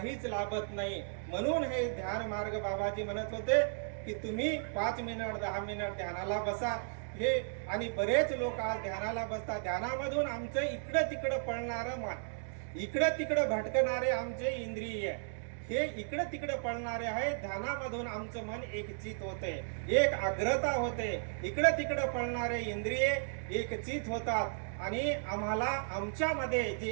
लाभत नाही. म्हणून हे ध्यान मार्ग बाबाजी म्हणत होते की तुम्ही 5 मिनिट 10 मिनिट ध्यानाला बसा. हे आणि बरेच लोक आज ध्यानाला बसतात. ध्यानामधून आमचं इकडं तिकडं पळणारं मन, इकडं तिकडं भटकणारे आमचे इंद्रिय, हे इकडं तिकडं पळणारे आहे. ध्यानामधून आमचं मन एकचित होते, एक आग्रता होते. इकडं तिकडं पळणारे इंद्रिय एकचित होतात आणि आम्हाला आमच्यामध्ये जी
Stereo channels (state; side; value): silent; left; digital silence